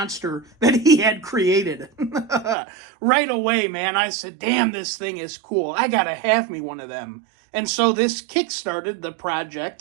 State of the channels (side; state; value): left; drops out; at 2.6 s